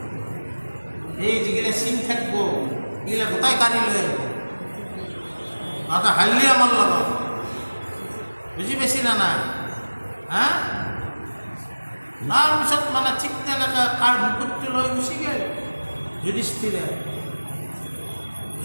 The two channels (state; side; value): inverted; both; correlation -1.00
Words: এই যিগিলা চিন থাকিব এইগিলা গোটাই কাঢ়ি লৈ আহিব, তাতে হাল্লি আমাৰ লগত, বুজি পাইছি না নাই? হা, তাৰপিছত মানে ঠিক তেনেকৈ কাৰ মুকুটটো লৈ গুচি গ'ল